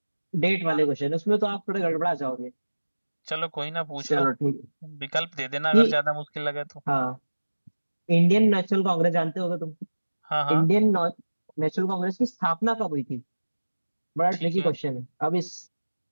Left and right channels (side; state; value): both; inverted; correlation -1.00